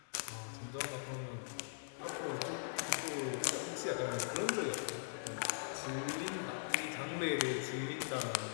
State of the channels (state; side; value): silent; right; digital silence